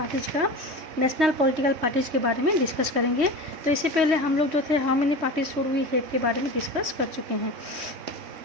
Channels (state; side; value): late; left; 3.1 ms